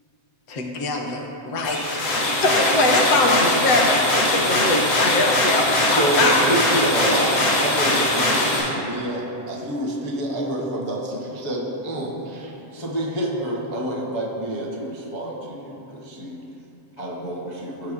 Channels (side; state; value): right; late; 7.6 ms